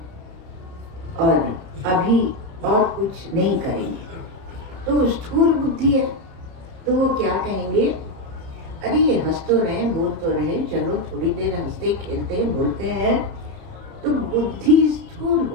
और अभी और कुछ नहीं करेंगे। तो स्थूल बुद्धि है, तो वो क्या कहेंगे, अरे ये हंस तो रहे, बोल तो रहे, चलो थोड़ी देर हंसते खेलते हैं, बोलते हैं, तो बुद्धि स्थूल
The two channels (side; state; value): left; late; 30 ms